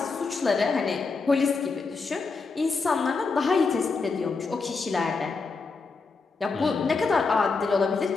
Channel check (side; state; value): right; quieter; 4.4 dB